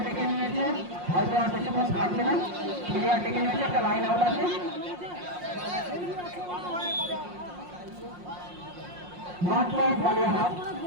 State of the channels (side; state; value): left; late; 5.6 ms